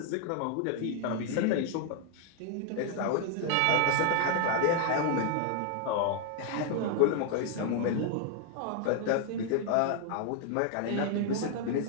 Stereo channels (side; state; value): both; different; correlation 0.00